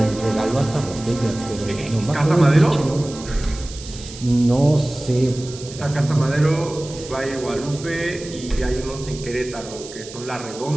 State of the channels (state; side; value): noise; right; hiss, 15 dB below the sound